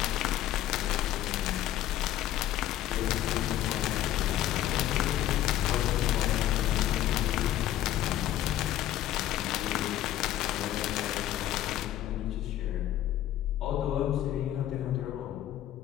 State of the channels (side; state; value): right; quieter; 12.9 dB